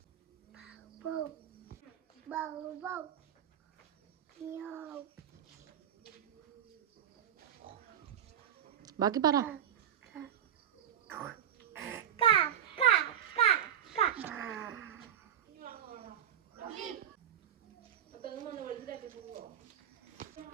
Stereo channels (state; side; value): quieter; left; 10.0 dB